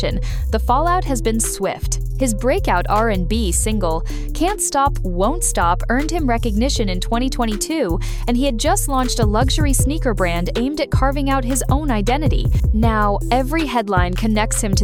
the fallout has been swift. His breakout R&B single, Can't Stop, Won't Stop, earned him recognition in 2022, and he had just launched a luxury sneaker brand aimed at carving out his own identity. Now, every headline connects him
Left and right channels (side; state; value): both; identical; correlation 1.00